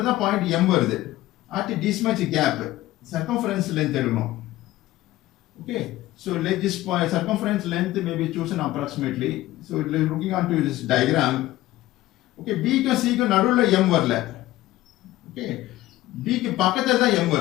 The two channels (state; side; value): quieter; right; 16.2 dB